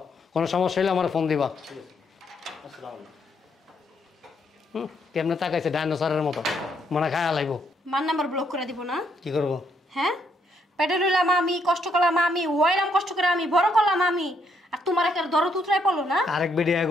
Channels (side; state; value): both; normal; correlation 0.73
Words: কোনো সমস্যা হলে আমার ফোন দিবা আলাইকুম ঠিক আছে আসসালামু আলাইকুম কেমনে তাকাইছে ডাইনোসরের মতো মনে খায়া লাগবো মার নাম্বার ব্লক করে দিব না কি করবো হ্যাঁ পেটে রইলাম আমি কষ্ট করলাম আমি ওয়াইলাম কষ্ট করে আমি বড় করলাম আমি আর তোমার একটা দরদ উতরাই পড়লো না আরেক বেডি